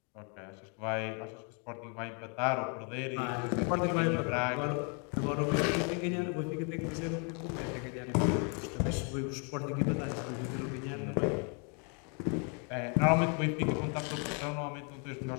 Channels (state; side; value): quieter; right; 37.2 dB